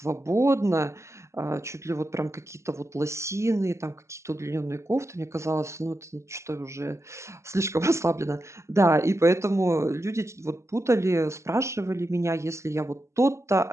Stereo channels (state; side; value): late; left; 0.14 ms